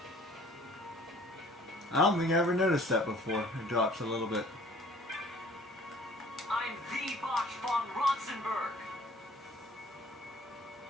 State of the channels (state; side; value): normal; both; correlation 0.53